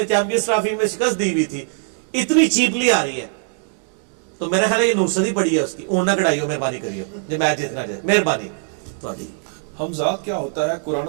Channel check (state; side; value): silent; left; 65 dB below the other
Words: چیمپئنز ٹرافی میں شکست دی ہوئی تھی اتنی چیپلی آ رہی ہے. تو میرا خیال ہے یہ نوسدی پڑی ہے اس کی, اون نہ کڑائیو, مہربانی کریو جو میچ جیتنا جائے, مہربانی تھوڑی. حمزات کیا ہوتا ہے, قرآن